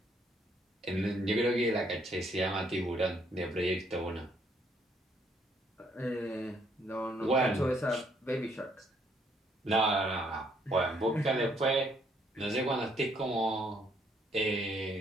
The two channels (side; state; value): both; normal; correlation 0.69